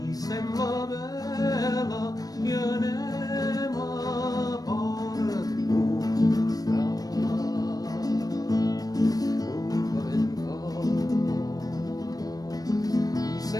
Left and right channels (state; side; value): late; right; 0.18 ms